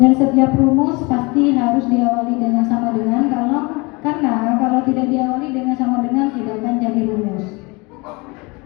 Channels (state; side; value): quieter; right; 26.8 dB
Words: setiap rumus pasti harus diawali dengan sama dengan karena kalau tidak diawali dengan sama dengan tidak akan jadi rumus.